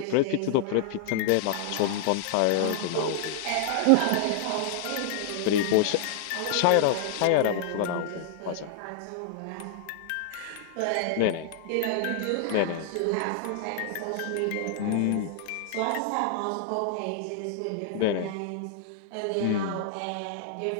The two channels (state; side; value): different; both; correlation -0.01